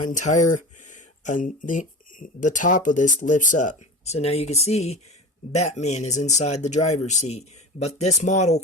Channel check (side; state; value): both; normal; correlation 0.32